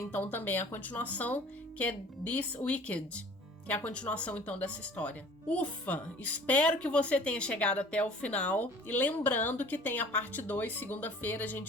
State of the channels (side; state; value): both; normal; correlation 0.48